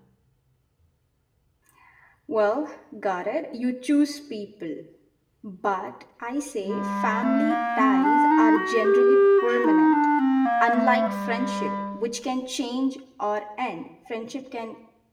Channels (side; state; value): both; identical; correlation 1.00